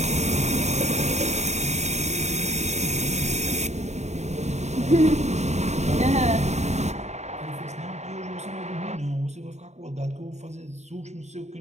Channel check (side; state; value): left; late; 0.33 ms